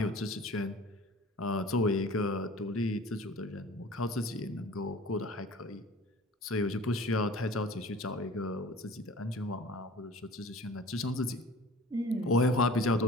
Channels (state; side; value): normal; both; correlation 0.44